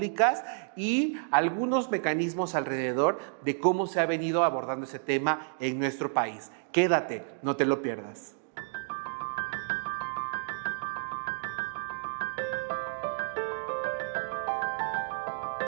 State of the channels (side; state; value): left; silent; digital silence